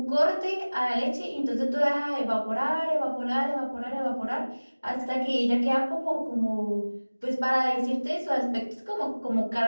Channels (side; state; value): both; inverted; correlation -1.00